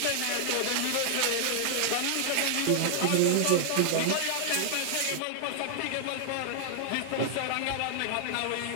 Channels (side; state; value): both; different; correlation 0.00